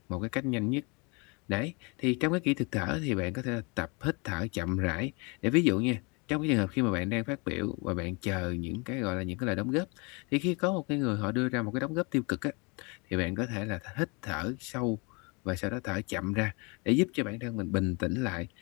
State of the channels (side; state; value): right; quieter; 30.4 dB